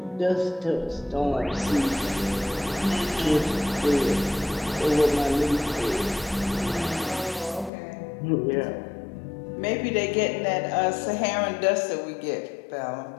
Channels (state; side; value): drops out; right; at 7.7 s